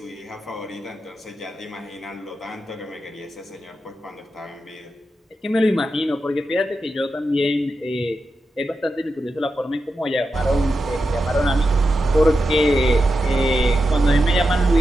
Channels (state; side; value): normal; both; correlation 0.89